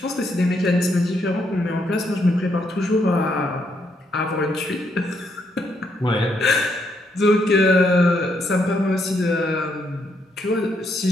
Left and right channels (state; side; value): normal; both; correlation 0.75